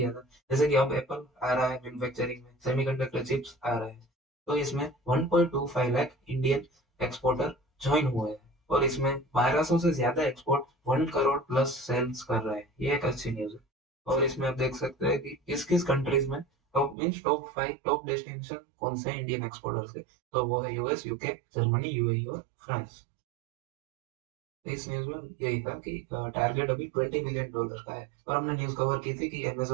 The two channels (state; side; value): drops out; left; at 16.9 s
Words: था। जैसे कि अब एप्पल आ रहा है मैन्युफैक्चरिंग में, सेमीकंडक्टर चिप्स आ रहे हैं, तो इसमें 1.25 लाख इंडियन एक्सपोर्टर ज्वाइन हुए हैं, और इसमें 1200 से ज्यादा एक्सपोर्ट 1 करोड़ प्लस सेल्स कर रहे हैं। ये एक अच्छी न्यूज है। और इसमें आप देख सकते हैं कि किस किस कंट्रीज में top means top 5 top destination कौन से इंडियन एक्सपोर्टर्स के, तो वो है यूएस, यूके, जर्मनी, यूएई और फ्रांस। इस न्यूज में यही था कि टारगेट अभी $20 बिलियन का है, और हमने न्यूज कवर की थी कि